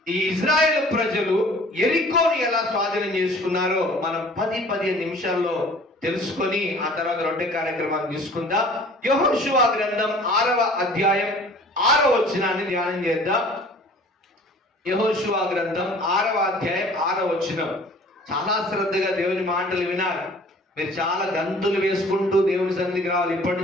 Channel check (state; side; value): normal; both; correlation 0.49